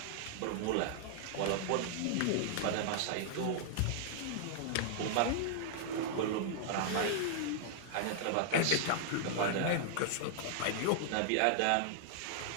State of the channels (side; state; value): both; different; correlation -0.01